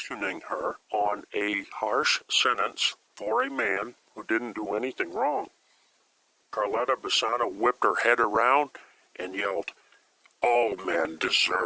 her on a harsh sentence for a man who didn't do anything wrong. Carletta Bassano whipped her head around and yelled, "All men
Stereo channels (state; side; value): identical; both; correlation 1.00